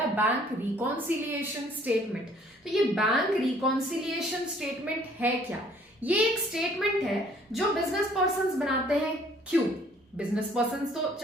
बैंक रिकॉन्सिलिएशन स्टेटमेंट। तो ये बैंक रिकॉन्सिलिएशन स्टेटमेंट है क्या? ये एक स्टेटमेंट है जो बिजनेस पर्संस बनाते हैं। क्यों? बिजनेस पर्संस तो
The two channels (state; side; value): normal; both; correlation 0.59